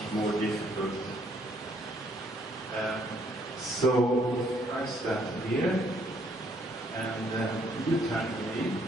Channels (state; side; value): normal; both; correlation 0.67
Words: more difficult. So I start here, and you turn to me.